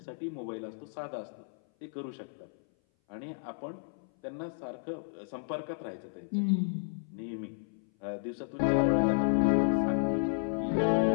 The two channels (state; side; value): silent; right; 56 dB below the other